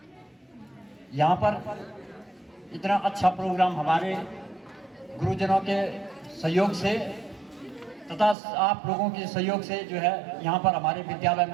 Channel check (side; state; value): left; drops out; at 8.3 s